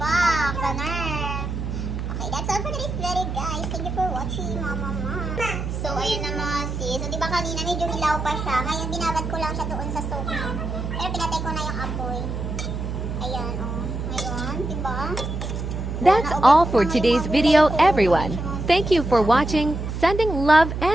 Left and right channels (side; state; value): right; noise; hum, 4 dB below the sound